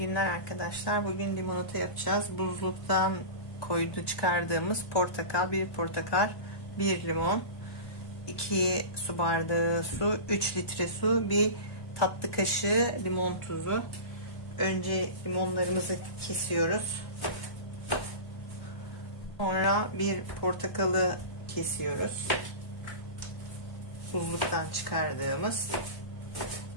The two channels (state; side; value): late; right; 1.2 ms